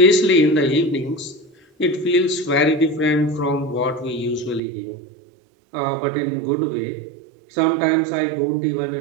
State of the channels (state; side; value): drops out; left; at 4.6 s